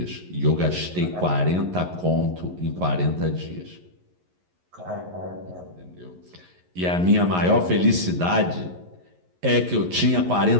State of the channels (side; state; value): left; late; 11 ms